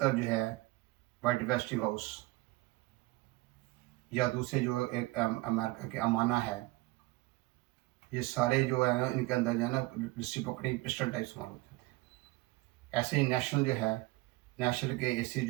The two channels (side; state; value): left; quieter; 21.1 dB